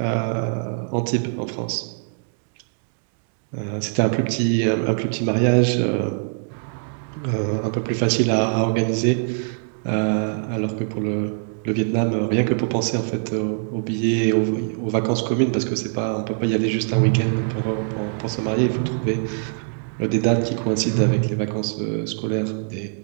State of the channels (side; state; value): left; silent; 63 dB below the other